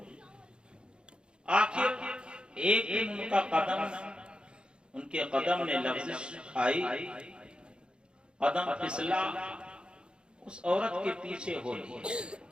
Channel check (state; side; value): late; left; 0.053 ms